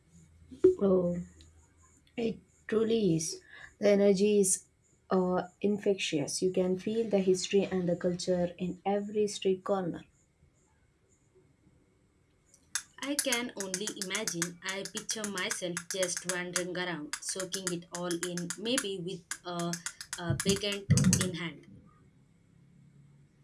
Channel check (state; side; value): identical; both; correlation 1.00